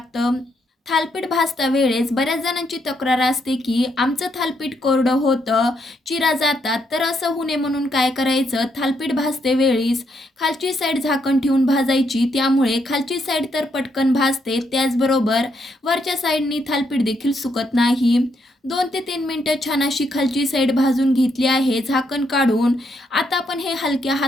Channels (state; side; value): normal; both; correlation 0.76